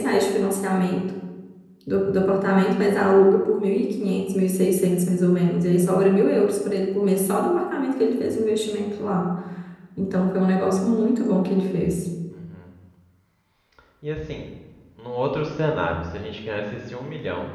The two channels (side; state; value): both; identical; correlation 1.00